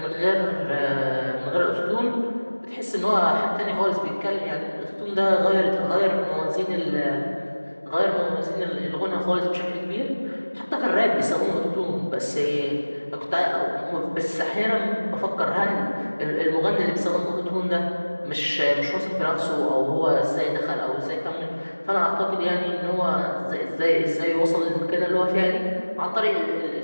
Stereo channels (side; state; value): both; inverted; correlation -1.00